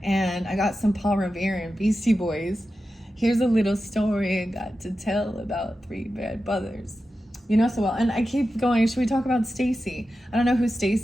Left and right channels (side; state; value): both; normal; correlation 0.92